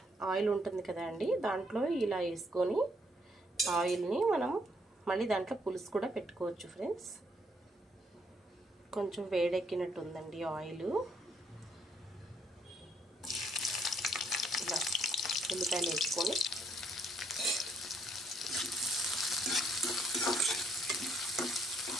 ఆయిల్ ఉంటుంది కదా అండి, దాంట్లో ఇలా వేసుకొని ఆయిల్ని మనం మళ్ళీ దాంట్లో పులుసు కూడా పెట్టుకోవచ్చు ఫ్రెండ్స్. కొంచెం వేడెక్కినట్టు ఉందండి ఆయిల్. ఇలా ఉల్లిపాయలు వేసుకొని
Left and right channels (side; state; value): both; normal; correlation 0.71